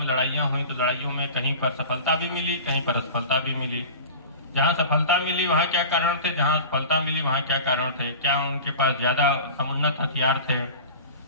लड़ाइयाँ हुई, तो लड़ाइयों में कहीं पर सफलता भी मिली, कहीं पर असफलता भी मिली। जहाँ सफलता मिली वहाँ क्या कारण थे, जहाँ असफलता मिली वहाँ क्या कारण थे, क्या उनके पास ज्यादा समुन्नत हथियार थे,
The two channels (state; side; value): inverted; both; correlation -0.36